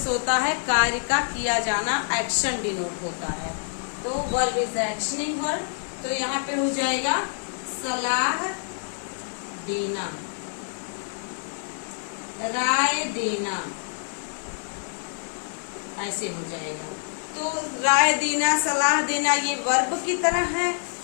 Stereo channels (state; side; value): silent; right; digital silence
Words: होता है कार्य का किया जाना, एक्शन डिनोट होता है। तो वर्ब इज एक्शनिंग वर्ब, तो यहाँ पे हो जाएगा सलाह देना, राय देना, ऐसे हो जाएगा। तो राय देना, सलाह देना ये वर्ब की तरह है,